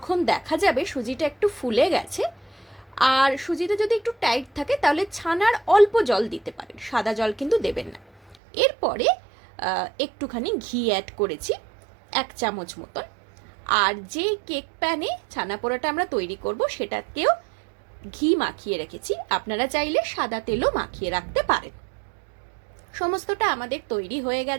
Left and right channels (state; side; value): drops out; left; at 8.3 s